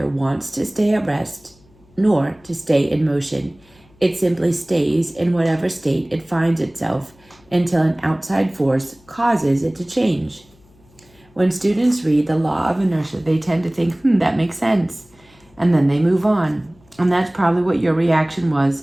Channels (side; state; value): left; noise; hum, 30 dB below the sound